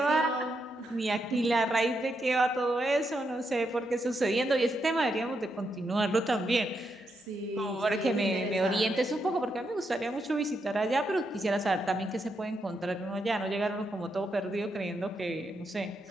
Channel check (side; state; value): both; normal; correlation 0.82